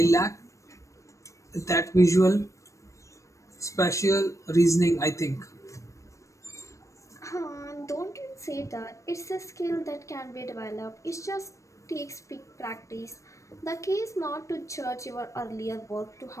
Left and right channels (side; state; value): right; late; 0.15 ms